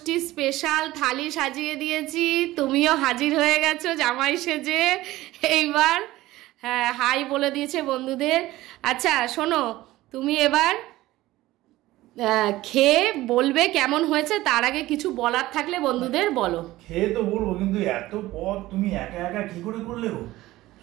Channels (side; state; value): left; quieter; 17.0 dB